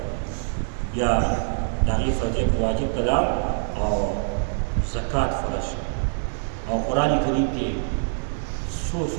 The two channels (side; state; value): left; silent; digital silence